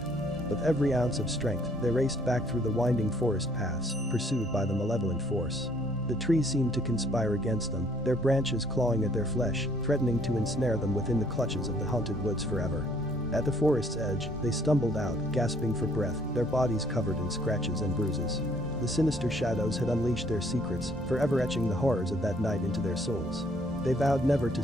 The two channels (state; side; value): normal; both; correlation 0.63